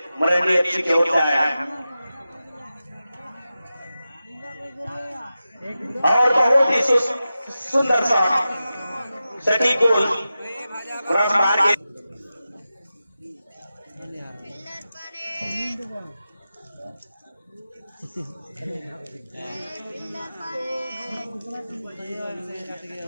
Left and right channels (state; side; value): inverted; both; correlation -0.93